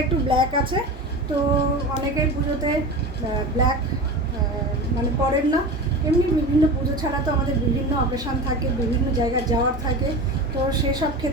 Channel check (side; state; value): both; normal; correlation 0.29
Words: একটু ব্ল্যাক আছে। তো অনেকের পুজোতে ব্ল্যাক মানে পরেন না, এমনি বিভিন্ন পুজো ছাড়া তো আমাদের বিভিন্ন অকেশান থাকে, বিভিন্ন জায়গায় যাওয়ার থাকে, তো সেসব